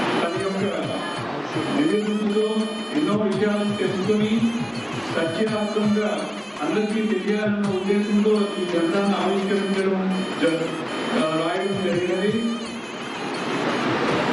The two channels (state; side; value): identical; both; correlation 1.00